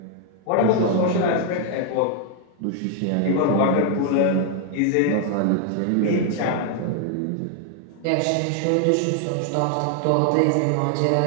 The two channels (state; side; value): different; both; correlation 0.00